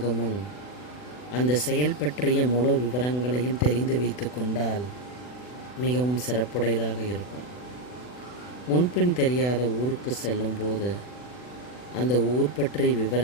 முன் அந்த செயல் பற்றிய முழு விவரங்களையும் தெரிந்து வைத்து கொண்டால் மிகவும் சிறப்புடையதாக இருக்கும். முன்பின் தெரியாத ஊருக்கு செல்லும்போது அந்த ஊர் பற்றிய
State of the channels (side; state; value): right; late; 40 ms